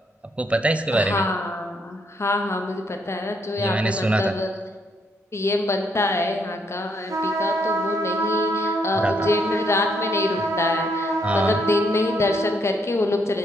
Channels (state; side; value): normal; both; correlation 0.73